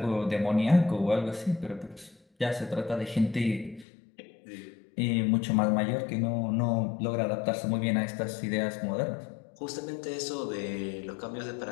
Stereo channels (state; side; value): drops out; right; at 3.9 s